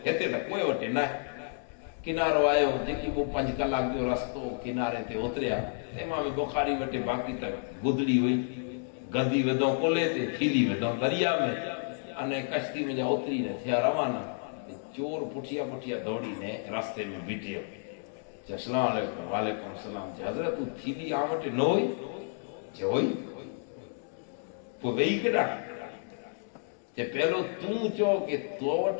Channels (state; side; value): silent; right; digital silence